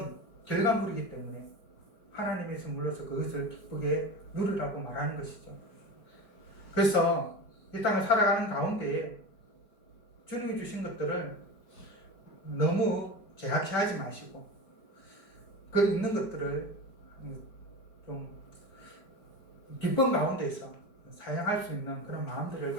결과물이기 때문에 하나님의 선물로서 그것을 기쁘게 누리라고 말하는 것이죠. 그래서 이 땅을 살아가는 가운데에 주님이 주신 것들을 너무 제약시하지 마시고 그 있는 것들을 좀 기쁨 가운데서 사용할 수 있는 그런 마음들을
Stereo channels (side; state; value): right; late; 4.4 ms